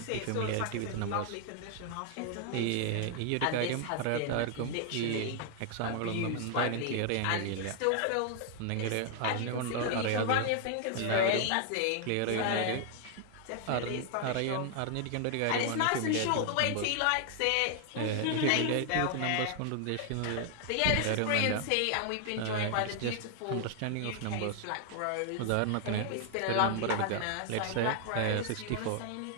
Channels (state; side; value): different; both; correlation 0.00